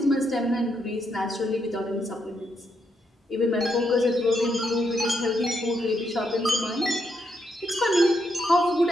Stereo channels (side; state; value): both; normal; correlation 0.79